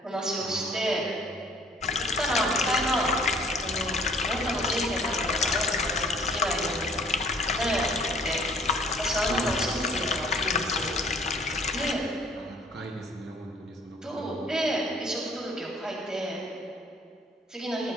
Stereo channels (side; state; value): both; normal; correlation 0.57